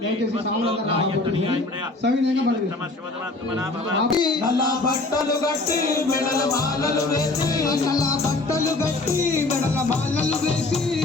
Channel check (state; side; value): quieter; right; 3.1 dB